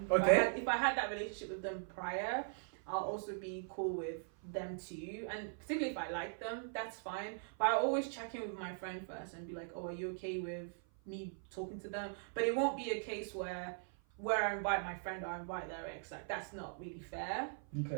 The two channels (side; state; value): left; silent; 51 dB below the other